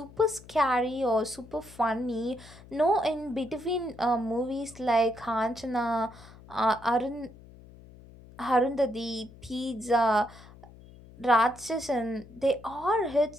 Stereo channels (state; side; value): noise; left; hum, 21 dB below the sound